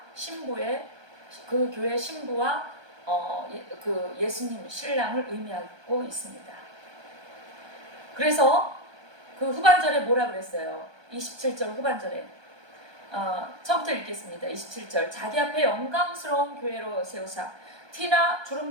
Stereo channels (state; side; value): late; left; 1.2 ms